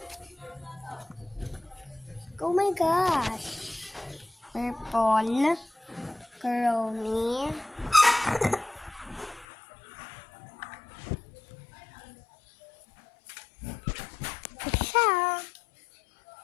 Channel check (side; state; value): right; drops out; at 9.5 s